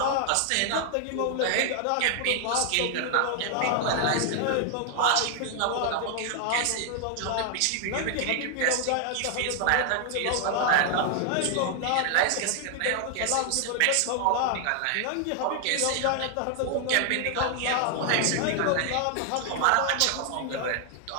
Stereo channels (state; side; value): different; both; correlation 0.00